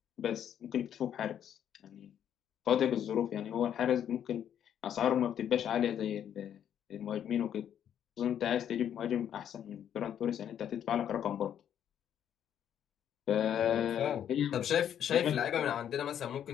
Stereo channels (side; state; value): right; quieter; 9.6 dB